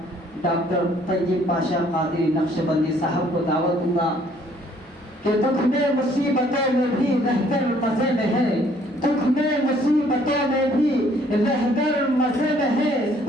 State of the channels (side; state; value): both; normal; correlation 0.62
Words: ڈاکٹر طیب پاشا قادری نقشبندی صاحب کو دعوت دوں گا کہ دکھ میں مصیبتوں میں بھی رہ کر مزے میں ہے. دکھ میں مصیبتوں میں بھی رہبر مزے میں ہے،